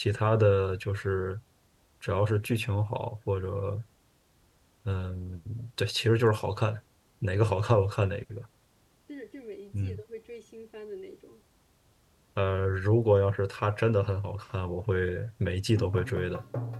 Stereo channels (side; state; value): both; identical; correlation 1.00